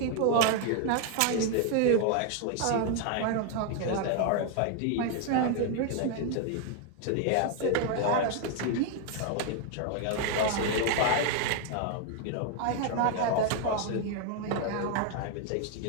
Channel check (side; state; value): both; different; correlation 0.00